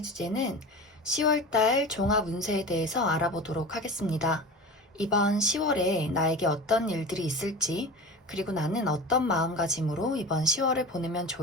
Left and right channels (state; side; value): normal; both; correlation 0.33